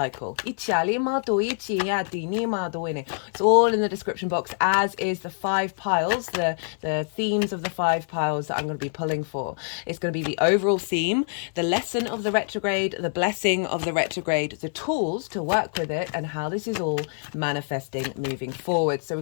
It's all in the description box, as is the 5 piles, the themes of the 5 piles that I'm going to be pulling for. It's going to be the overall theme, the lesson of the retrograde, the blessing of the retrograde, the tools to work with it, and how this is all manifesting moving forward. So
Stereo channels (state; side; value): silent; right; digital silence